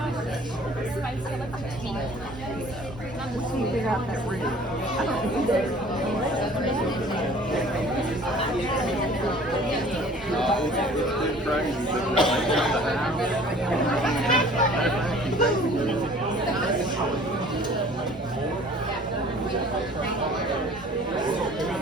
Spicy, I like the tea. Not the sweet. Figure out that root.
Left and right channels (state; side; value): normal; both; correlation 0.50